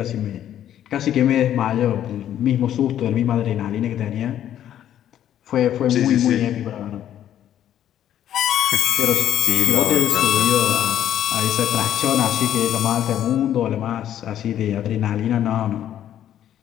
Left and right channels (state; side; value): quieter; right; 11.0 dB